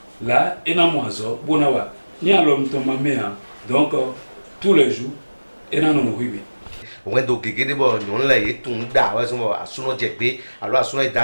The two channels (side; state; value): both; inverted; correlation -1.00